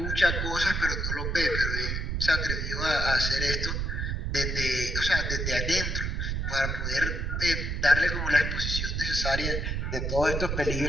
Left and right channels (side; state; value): right; noise; rumble, 1 dB below the sound